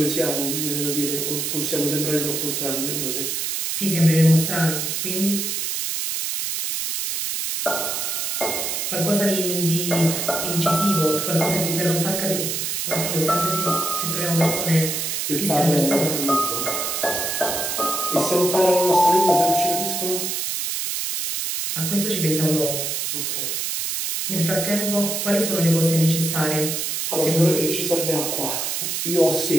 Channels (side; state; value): right; noise; hiss, 2 dB below the sound